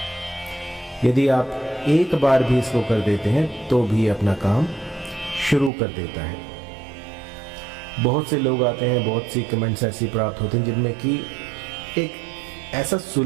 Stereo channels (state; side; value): drops out; left; at 5.7 s